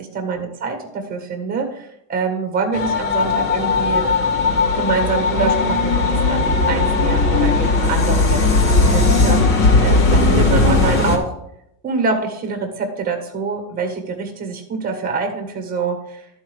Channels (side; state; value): both; normal; correlation -0.04